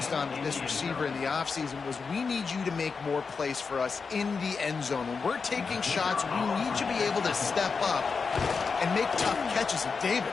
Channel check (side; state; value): right; quieter; 5.1 dB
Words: on with this receiver in the offseason was we need you to make more plays for us in the end zone. When we're taking shots, we need you to be able to step up and make tough catches. And David,